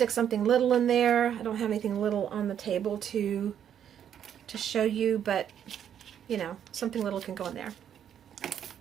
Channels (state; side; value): quieter; left; 9.3 dB